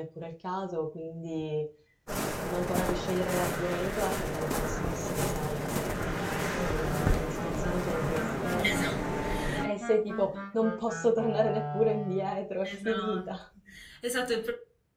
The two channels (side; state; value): both; identical; correlation 1.00